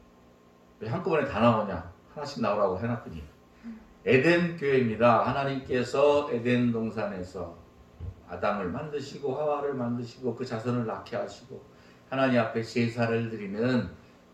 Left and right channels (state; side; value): identical; both; correlation 1.00